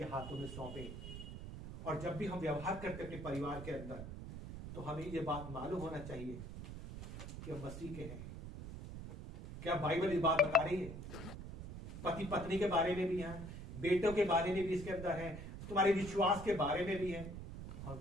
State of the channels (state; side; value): noise; right; rumble, 9 dB below the sound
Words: हाथों में सौंपें, और जब भी हम व्यवहार करते अपने परिवार के अंदर, तो हमें ये बात मालूम होना चाहिए कि हम मसीह के हैं। क्या बाइबल इस बात बता रही है? पति पत्नी के बारे में भी है, बेटों के बारे में भी इसके अंदर है, तुम्हारे विश्वास के बारे में भी है, और